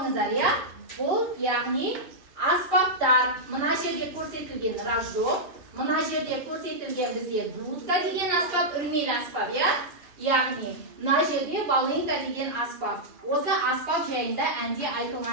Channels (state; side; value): late; left; 2.4 ms